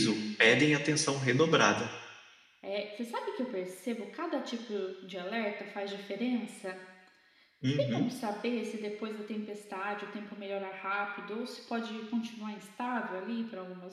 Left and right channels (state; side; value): identical; both; correlation 1.00